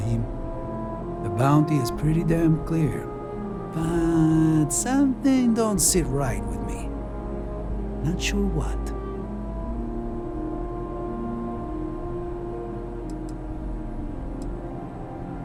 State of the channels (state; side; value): identical; both; correlation 1.00